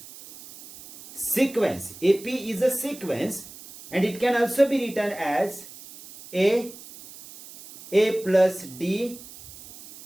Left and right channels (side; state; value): right; noise; hiss, 17 dB below the sound